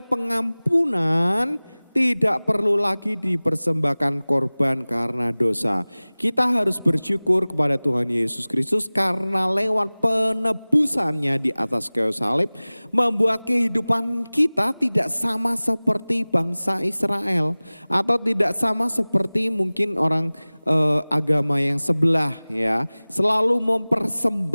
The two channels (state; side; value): inverted; both; correlation -1.00